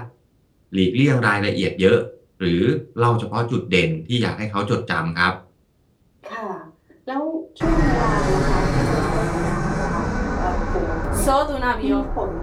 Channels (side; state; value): both; identical; correlation 1.00